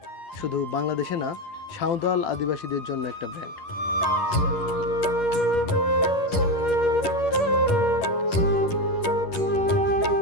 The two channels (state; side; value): late; right; 11 ms